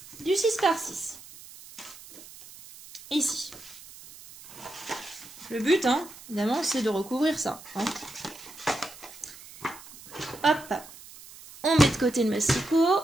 Du 6 par 6. Ici. Le but, hein, évidemment, c'est de recouvrir ça. Hein. Hop. On met de côté le massicot.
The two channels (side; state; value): right; noise; hiss, 18 dB below the sound